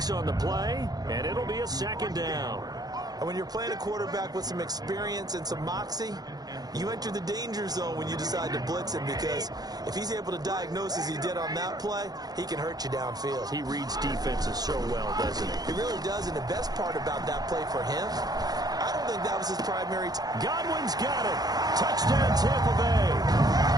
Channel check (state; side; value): late; left; 0.19 ms